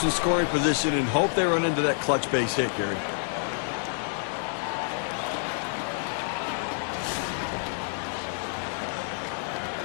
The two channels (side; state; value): right; silent; digital silence